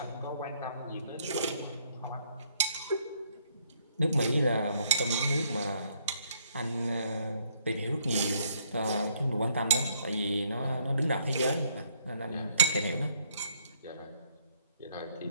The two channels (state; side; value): inverted; both; correlation -0.69